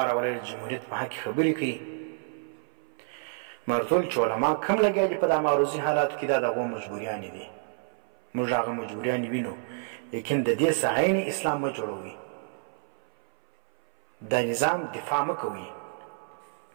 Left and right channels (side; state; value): left; silent; 59 dB below the other